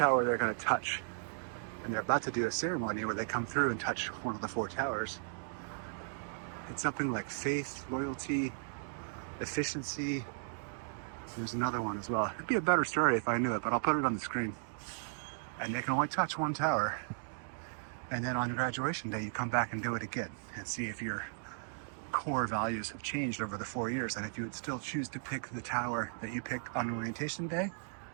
they're going to touch. And they're about to do a ceremony where they come through and touch one of the 4 towers. It's something like faith, loyalty, efficiency. There's another one as well. It'd be a better story if I knew it, but I'll put it on the screen. And they can only touch one tower. And then on graduation day, you come back and do it again and see if your core values have changed over the 4 years, and if you would still choose to pick the tower that you picked on orientation day,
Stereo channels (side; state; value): left; silent; digital silence